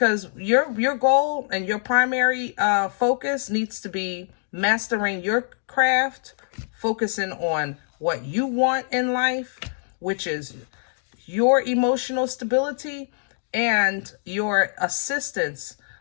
your goal and your primary focus needs to be mastering your craft, focusing on what you want in life, which is your emotional stability and your assistance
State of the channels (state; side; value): silent; right; digital silence